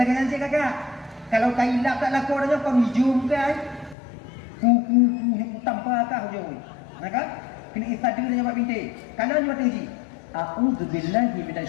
lagi nanti kakak. Kalau kailap tak laku orangnya kau hijum kan? Tanpa kah hujung. Maka kena istiadat dia buat bintik. Kalau dia buat uji. A'udzubillahi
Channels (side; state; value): right; drops out; at 4.0 s